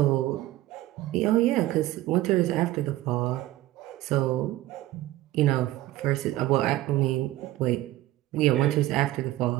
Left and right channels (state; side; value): quieter; left; 16.3 dB